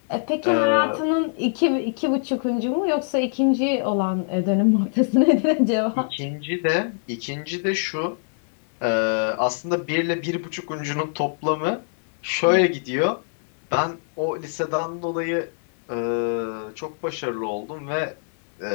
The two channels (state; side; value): silent; right; 63 dB below the other